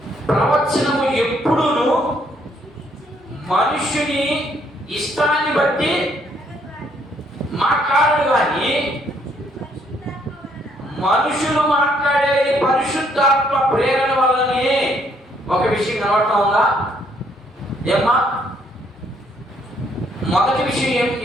ప్రవచనము ఎప్పుడును మనుషుని ఇష్టాన్ని బట్టి మాట్లాడడు కానీ మనుషులు మాట్లాడేది పరిశుద్ధాత్మ ప్రేరణ వల్లనే. ఒక విషయం కనబడతా ఉందా ఏమ్మా? మొదటి విషయం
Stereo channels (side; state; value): both; normal; correlation 0.69